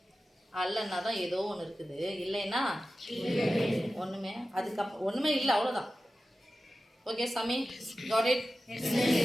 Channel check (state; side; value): normal; both; correlation 0.94